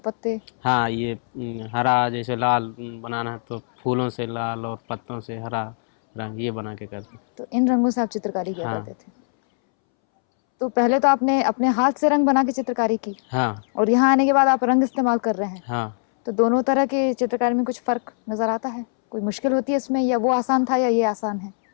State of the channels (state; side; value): silent; right; 64 dB below the other